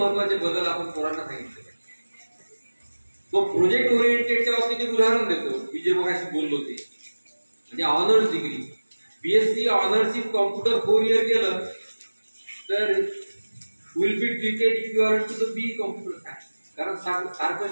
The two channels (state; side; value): inverted; both; correlation -1.00